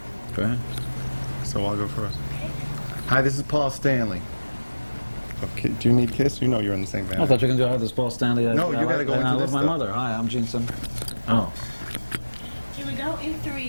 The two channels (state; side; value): inverted; both; correlation -1.00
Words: Go ahead. So I'll go first. Hi, this is Paul Stanley. Okay, do you need Kiss? You know you're in the same band. I thought you were going to go, hi, this is Paul Stanley. No, you gotta go into I this love my stuff. mother. Hi, I'm Gene Simmons. Oh. Here we go. In